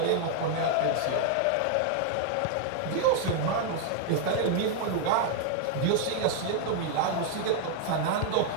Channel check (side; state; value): both; different; correlation 0.00